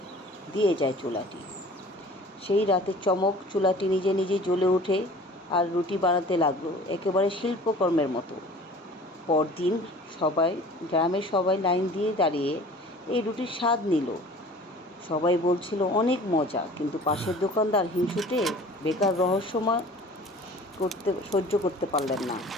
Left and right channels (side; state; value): both; normal; correlation 0.45